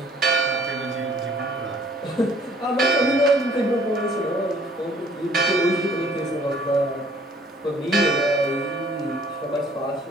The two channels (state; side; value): normal; both; correlation 0.57